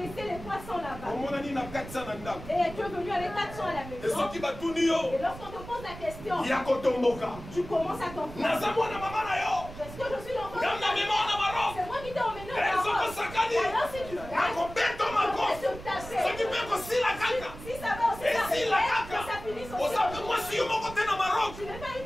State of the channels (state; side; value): noise; right; rumble, 13 dB below the sound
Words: les 300 là-bas. Omonani na 400 na ndako. Et tu es venu avec 400 à la maison. Esoki batuni yo. Et lorsqu'on te pose la question, Ya kotomboka. tu commences à comprendre. Naza mwana mama na yo. Est-ce que je suis l'enfant de Gamna ta mema na maro. C'est moi qui t'ai emmené au Ezoko Maroc. sakani. Alors si tu gagnes, Nakobeto je mako. vais te taper. Soki pe kosila kaka. Si ça va aussi Esila t'arriver, kaka. que ça finisse aussi. Osape mwasi yo moko te na Maroc. Tu n'es pas